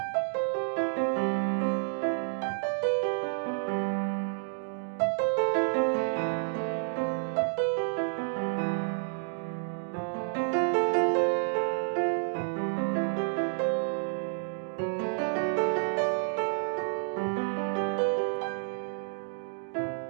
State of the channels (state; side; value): silent; left; digital silence